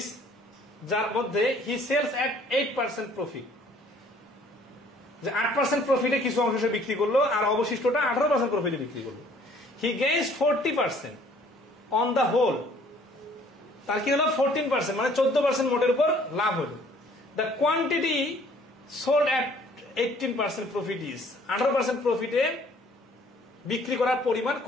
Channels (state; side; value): normal; both; correlation 0.57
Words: যার মধ্যে he sells at 8% profit, যে 8% প্রফিটে কিছু অংশ সে বিক্রি করলো আর অবশিষ্টটা 18% প্রফিটে বিক্রি করলো। He gains 40% on the whole. তার কি হলো 14%, মানে 14% মোটের উপর লাভ হলো। The quantity sold at 18% profit is, 18% প্রফিটে বিক্রি করার পরিমাণ